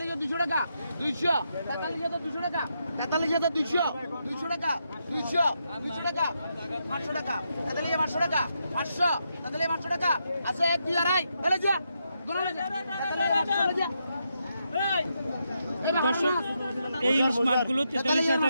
টাকা 200 200 টাকা 200 200 টাকা 200 টাকা 500 টাকা 500 টাকা 500 টাকা আছে 1 2 আড়াই এলে যা দর্শক এই ইলিশ মাছগুলো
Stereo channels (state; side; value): inverted; both; correlation -0.82